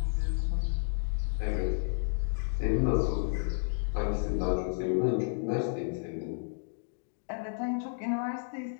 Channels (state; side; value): silent; right; digital silence